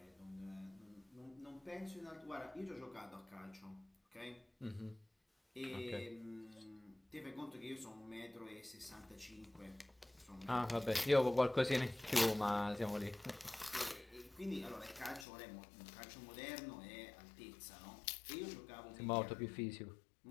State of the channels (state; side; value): drops out; right; at 15.2 s